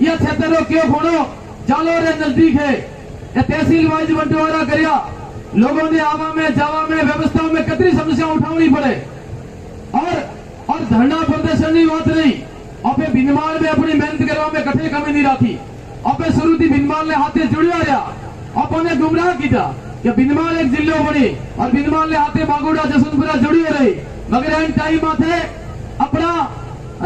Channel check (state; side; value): identical; both; correlation 1.00